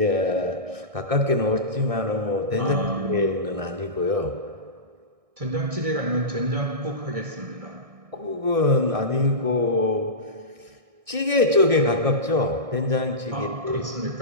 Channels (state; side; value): late; left; 1.6 ms